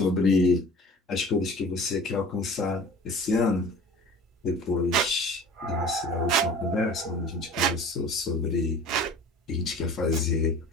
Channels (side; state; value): both; normal; correlation 0.42